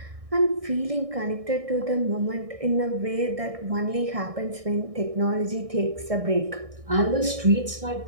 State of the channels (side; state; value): left; late; 1.6 ms